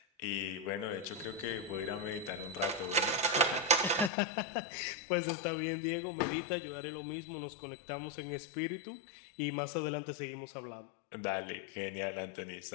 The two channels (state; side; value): drops out; right; at 4.1 s